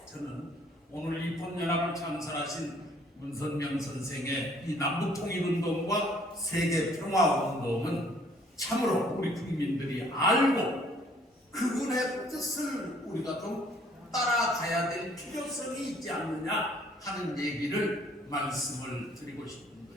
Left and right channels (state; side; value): normal; both; correlation 0.60